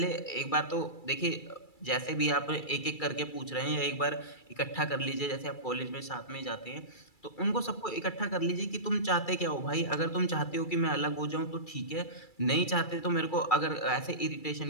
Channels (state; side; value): late; right; 2.3 ms